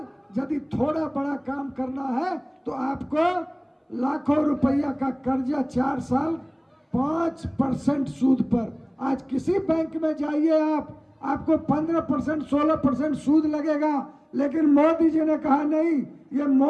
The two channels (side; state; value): both; identical; correlation 1.00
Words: यदि थोड़ा बड़ा काम करना है तो आपको लाखों रुपया का कर्जा 4 साल 5% सूद पर। आज किसी बैंक में जाइए आप, आपको 15% 16% सूद लगेगा, लेकिन मोदी जी ने कहा नहीं, ये